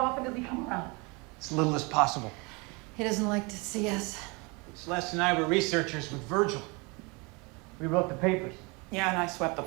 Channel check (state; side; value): quieter; left; 28.5 dB